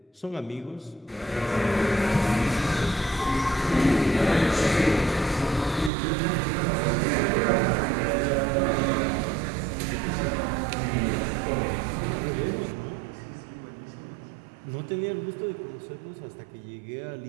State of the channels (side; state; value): left; drops out; at 5.9 s